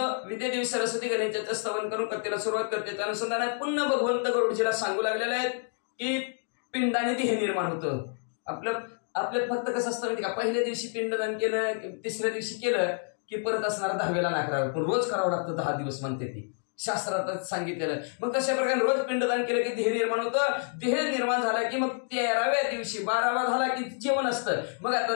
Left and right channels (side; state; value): right; silent; 58 dB below the other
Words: विद्यादेवी सरस्वती गणेशाचं स्तवन करून कथेला सुरुवात करते। त्या अनुषंगाने पुन्हा भगवंत गरुडजीला सांगू लागलेले आहेत की पिंडाने देह निर्माण होतं। आपलं फक्त कसं असतं माहिती का, पहिल्या दिवशी पिंडदान केलं, तिसऱ्या दिवशी केलं की परत असणारा 10वेला नाही करावं, पण रोज करावं लागतं 10 दिवस म्हणते ती शास्त्रात सांगितलेलं। मग तशा प्रकारे रोज पिंडदान केलं की देह निर्माण होतं। देह निर्माण झाला की मग 13व्या दिवशी 12वा झाला की जेवण असतं। मग आता